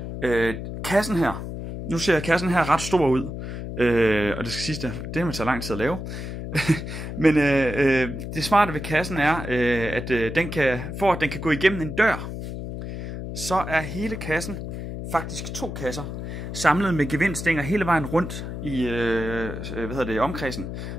Kassen her. Nu ser kassen her ret stor ud. Og det skal siges, det må tage lang tid at lave. Men det smarte ved kassen er, at den kan gå igennem en dør, så er hele kassen, faktisk 2 kasser, samlet med gevindstænger hele vejen rundt i omkredsen.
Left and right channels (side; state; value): left; noise; hum, 7 dB below the sound